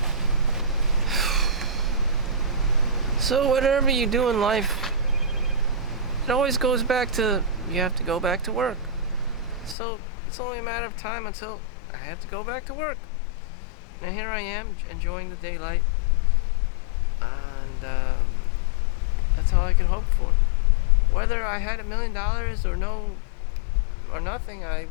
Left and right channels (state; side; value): drops out; right; at 9.8 s